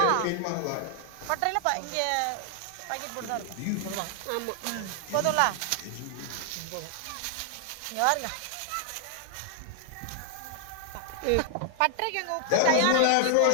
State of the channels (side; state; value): both; different; correlation 0.00